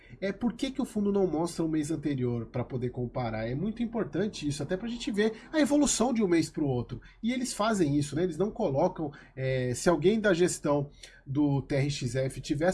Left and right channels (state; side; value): identical; both; correlation 1.00